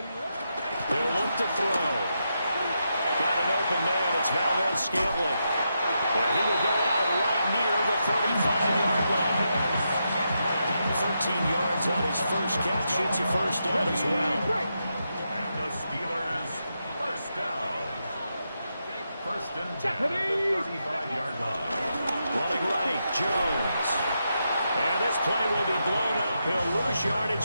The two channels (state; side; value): inverted; both; correlation -0.84